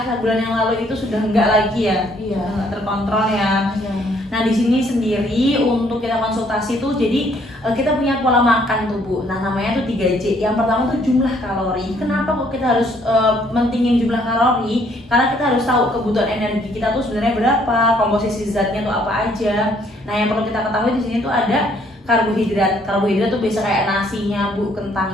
bulan yang lalu itu sudah enggak lagi ya? Iya. Udah nggak terkontrol ya. Iya. Nah, di sini sendiri untuk kita konsultasi tuh jadi kita punya pola makan tuh Bu. Nah, namanya tuh 3J. Yang pertama tuh jumlah kalori. Kenapa kok kita harus mentingin jumlah kalori? Karena kita harus tahu kebutuhan energi kita tuh sebenarnya berapa, komposisi zatnya tuh apa aja. Nah, yang perlu kita ketahui di sini tuh ada karbohidrat. Karbohidrat tuh biasa kayak nasinya, Bu,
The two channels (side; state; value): both; normal; correlation 0.65